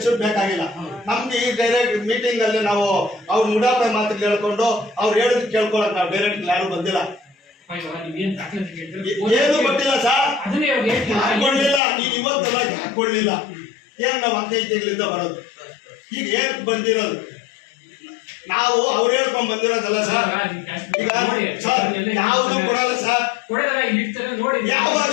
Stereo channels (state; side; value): drops out; right; at 11.8 s